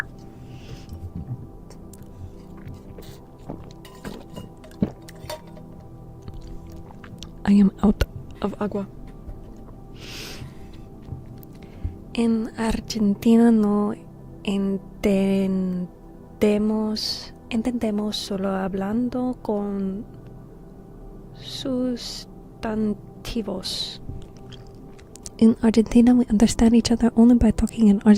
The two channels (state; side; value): identical; both; correlation 1.00